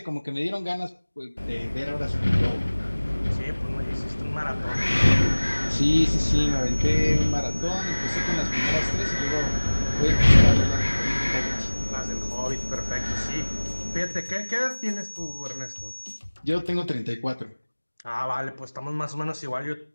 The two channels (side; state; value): both; inverted; correlation -1.00